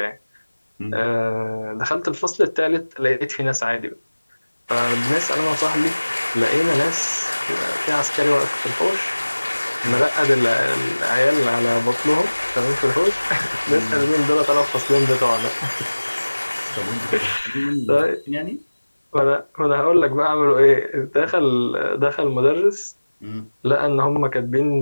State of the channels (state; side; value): inverted; both; correlation -1.00